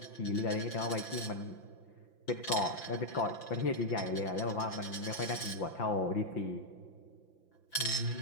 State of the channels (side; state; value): right; late; 5.9 ms